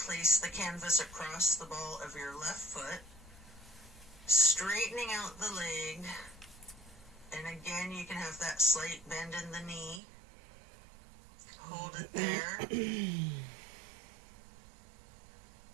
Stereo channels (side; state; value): left; drops out; at 10.0 s